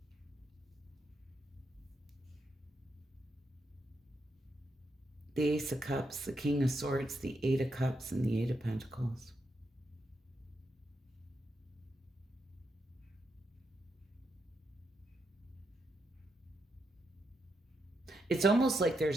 The Ace of Cups, the King of Swords, the Eight of Cups, and the Eight of Pentacles. It's almost like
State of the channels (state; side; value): normal; both; correlation 0.82